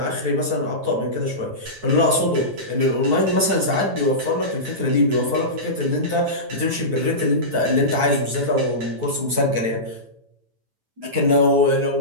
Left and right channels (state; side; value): late; left; 9.1 ms